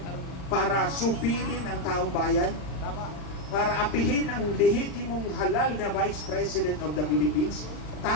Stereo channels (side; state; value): right; late; 40 ms